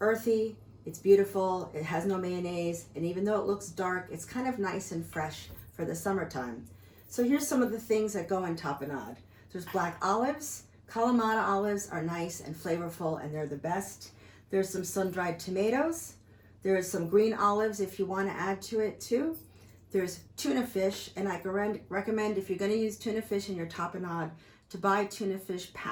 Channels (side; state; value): both; identical; correlation 1.00